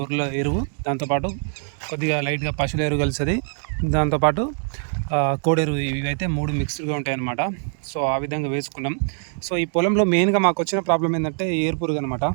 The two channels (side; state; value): left; silent; 56 dB below the other